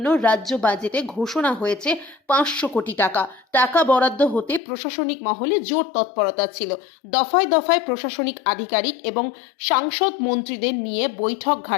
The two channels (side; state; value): right; drops out; at 4.6 s